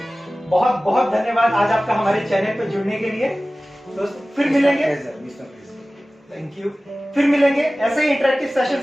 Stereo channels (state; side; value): normal; both; correlation 0.97